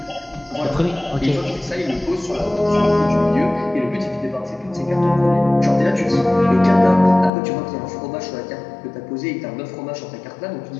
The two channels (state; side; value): drops out; right; at 7.3 s